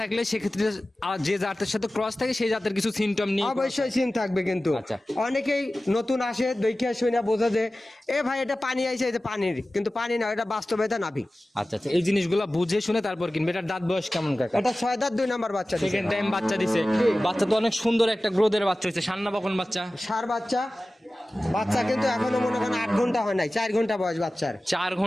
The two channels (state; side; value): normal; both; correlation 0.96